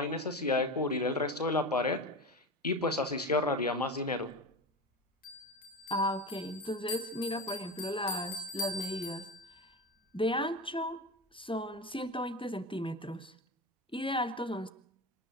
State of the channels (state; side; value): normal; both; correlation 0.24